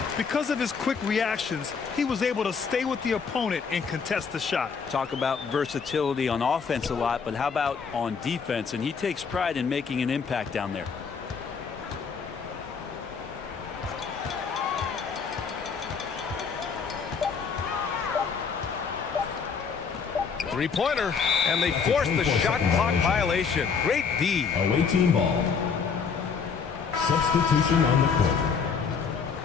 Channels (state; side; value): quieter; right; 5.9 dB